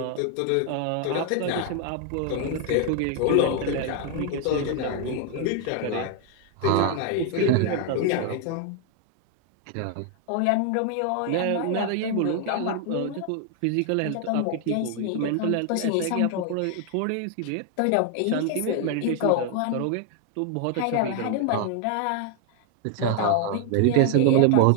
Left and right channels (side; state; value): both; different; correlation 0.00